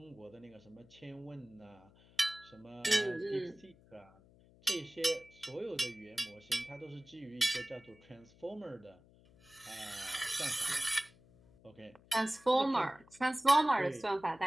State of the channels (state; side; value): noise; left; hum, 26 dB below the sound